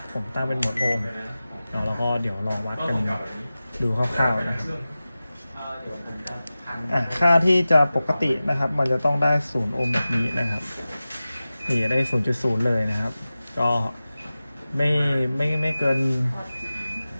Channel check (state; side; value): inverted; both; correlation -0.96